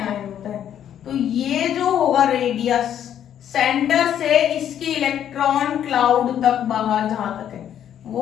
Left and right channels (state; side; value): quieter; right; 10.0 dB